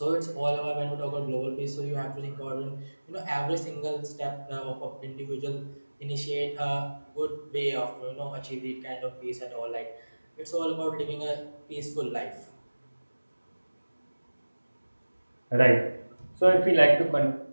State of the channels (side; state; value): both; inverted; correlation -1.00